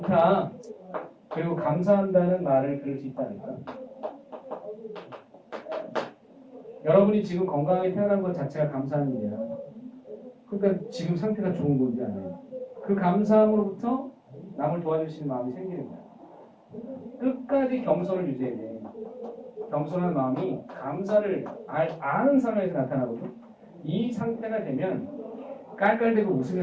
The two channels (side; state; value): both; identical; correlation 1.00